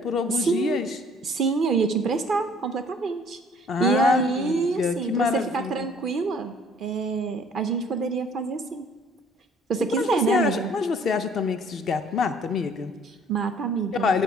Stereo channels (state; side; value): normal; both; correlation 0.56